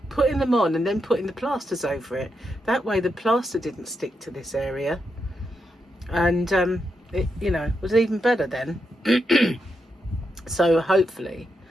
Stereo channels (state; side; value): normal; both; correlation 0.84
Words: putting them on, and then putting the plasters over it. That way, the plaster didn't stick to this area, and it, you know, was even better then. So hopefully